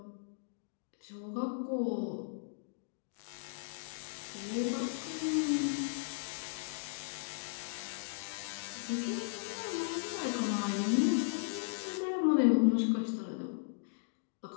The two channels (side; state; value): right; silent; digital silence